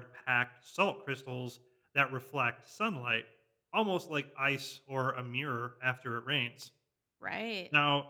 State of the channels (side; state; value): both; identical; correlation 1.00